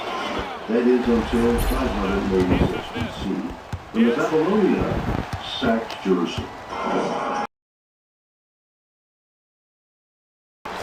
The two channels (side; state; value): both; identical; correlation 1.00